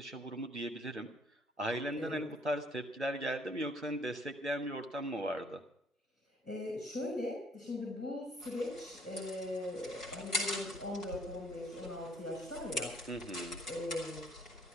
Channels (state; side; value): normal; both; correlation 0.61